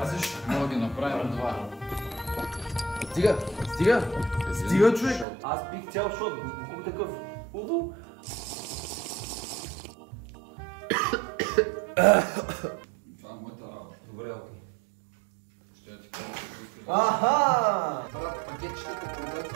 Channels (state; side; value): drops out; left; at 5.2 s